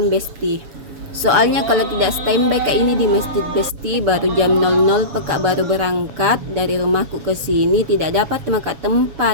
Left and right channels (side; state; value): left; late; 7.2 ms